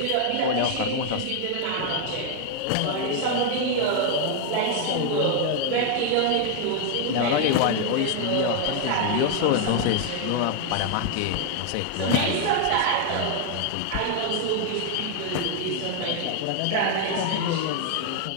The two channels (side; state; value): both; different; correlation 0.00